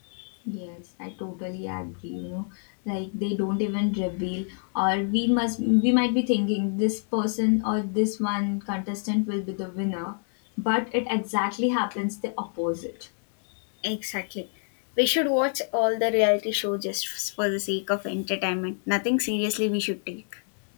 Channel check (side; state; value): right; silent; 58 dB below the other